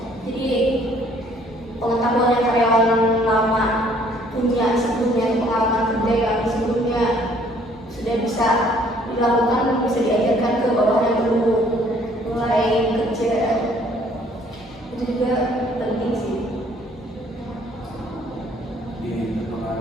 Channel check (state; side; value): normal; both; correlation 0.60